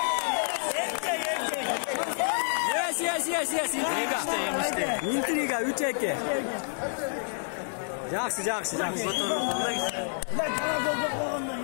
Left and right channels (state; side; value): silent; right; digital silence